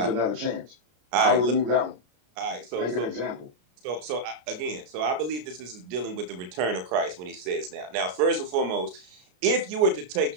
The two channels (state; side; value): late; left; 33 ms